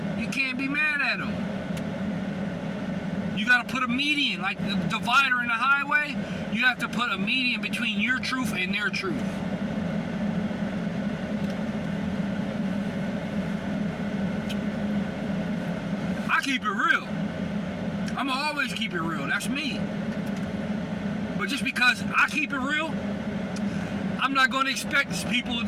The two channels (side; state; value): both; identical; correlation 1.00